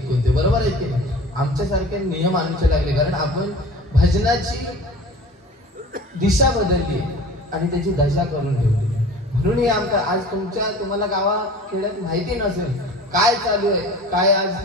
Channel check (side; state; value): both; normal; correlation 0.41